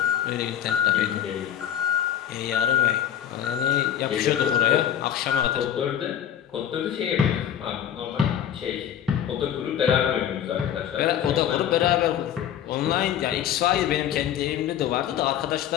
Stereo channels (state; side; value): quieter; right; 10.1 dB